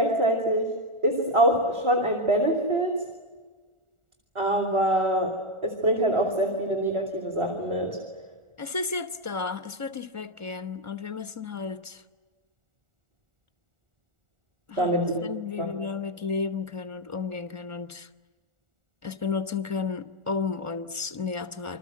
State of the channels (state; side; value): late; left; 1.4 ms